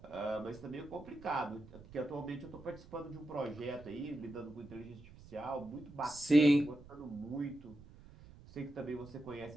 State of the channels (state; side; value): noise; right; rumble, 19 dB below the sound